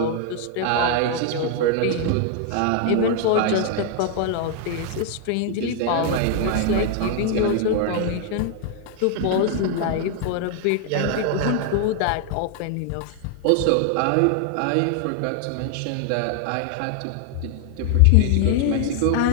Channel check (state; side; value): different; both; correlation 0.00